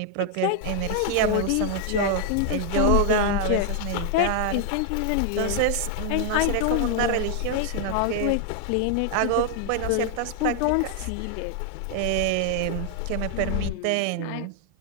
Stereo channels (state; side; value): different; both; correlation 0.00